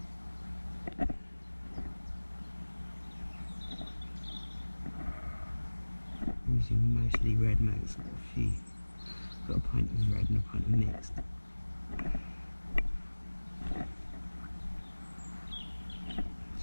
I'm using mostly red mags, got a pint of red and a pint of mixed.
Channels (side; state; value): both; inverted; correlation -1.00